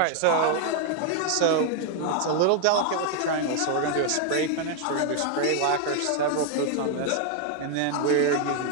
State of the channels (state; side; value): different; both; correlation 0.00